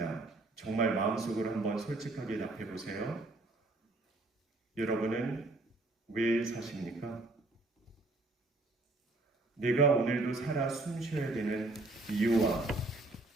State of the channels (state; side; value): quieter; left; 3.0 dB